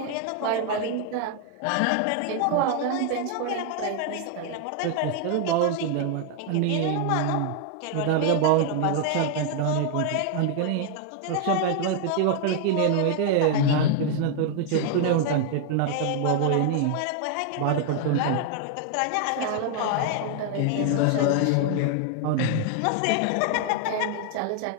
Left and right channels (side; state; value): both; different; correlation 0.00